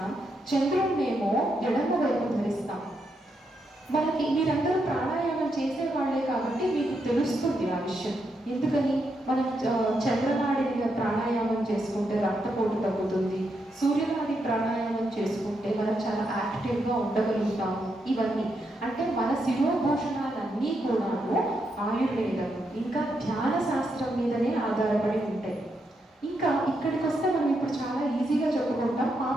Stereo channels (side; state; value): both; normal; correlation 0.81